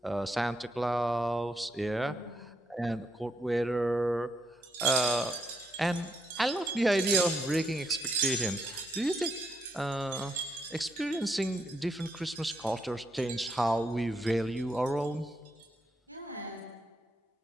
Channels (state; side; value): normal; both; correlation 0.77